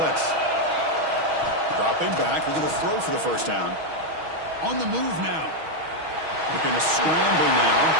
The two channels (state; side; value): late; left; 6.3 ms